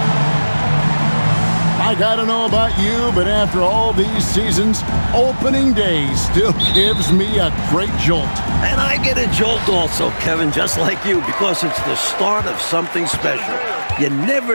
I gotta know about you, but after all these seasons, opening day still gives me a great jolt. And I get a jolt also, Kevin, just like you, because it's the start of something special. You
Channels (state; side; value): inverted; both; correlation -1.00